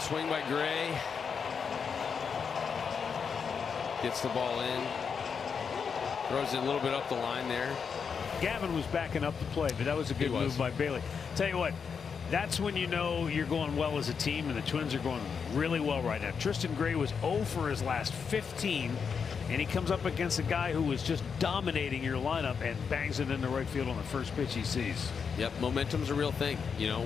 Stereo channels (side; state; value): right; quieter; 6.2 dB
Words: swing by Gray. Gets the ball in. Throws it a little bit up the line there. Gavin was backing up the play, but that was a good move by Bailey. Tell you what, that's when you know you're going well as a team, and the Twins are going really well right now. Tristan Gray was 0 for his last 15, and he comes up against a guy who was just dominating your lineup and bangs it into right field on the first pitch he sees. Yep, momentum's a real thing. You